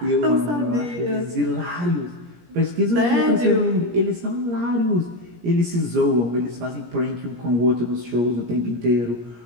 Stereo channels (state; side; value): late; left; 17 ms